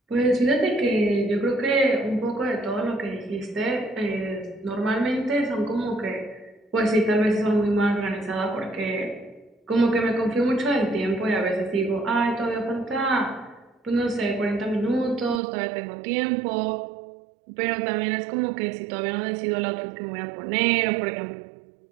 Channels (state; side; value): drops out; left; at 15.4 s